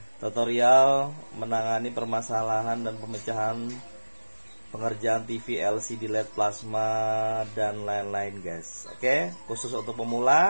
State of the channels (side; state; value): both; inverted; correlation -1.00